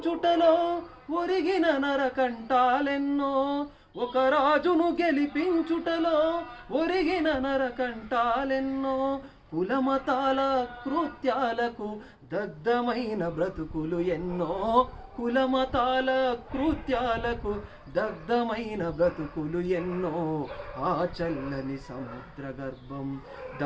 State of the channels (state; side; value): identical; both; correlation 1.00